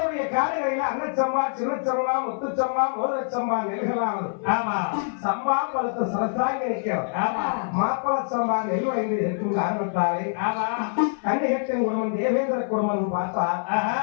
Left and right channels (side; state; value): right; silent; 58 dB below the other